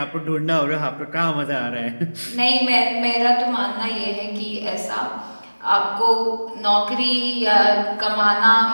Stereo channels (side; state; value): both; inverted; correlation -1.00